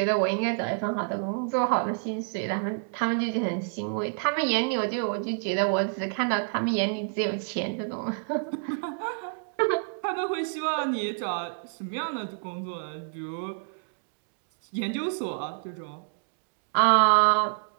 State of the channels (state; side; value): silent; left; digital silence